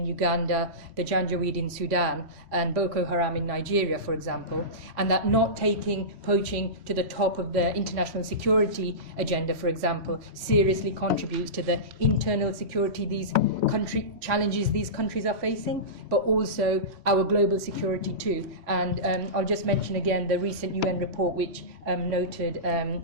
Uganda, the Janjaweed in Sudan, and Boko Haram in Nigeria, for example, and that not taking poaching to the top of the international security agenda, for example, seriously contributes to the internal security challenges these countries are facing, but also our global security too. And I'll just mention again the recent UN report which noted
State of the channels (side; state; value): left; late; 3.1 ms